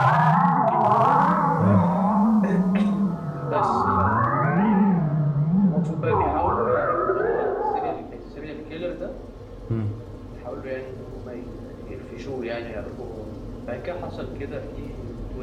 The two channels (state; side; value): identical; both; correlation 1.00